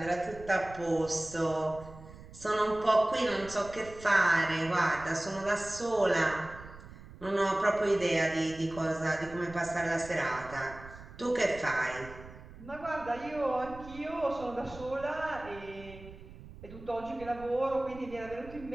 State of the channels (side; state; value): right; noise; rumble, 17 dB below the sound